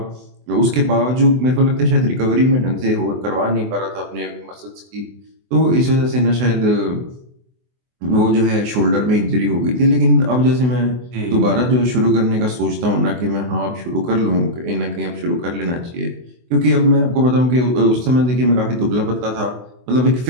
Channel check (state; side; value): late; left; 24 ms